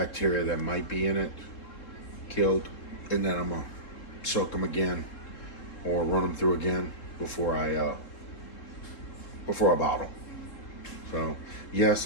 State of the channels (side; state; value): right; late; 3.8 ms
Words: that might be in it killed, and then I'm gonna soak them again or run them through again before I bottle. So